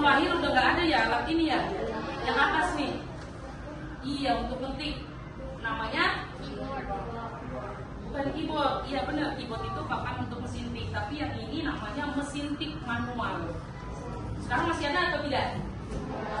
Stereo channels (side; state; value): both; identical; correlation 1.00